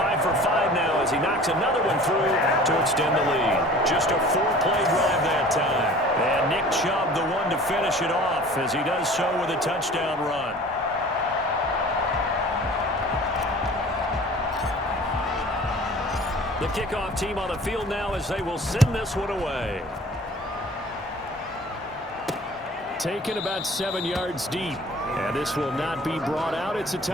for 5 now as he knocks another one through to extend the lead. Just a 4-play drive that time. And Nick Chubb, the one to finish it off as he does so with a touchdown run. The kickoff team on the field now as they will send this one away. Taken about 7 yards deep. And this will not be brought out. It's a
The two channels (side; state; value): both; normal; correlation 0.46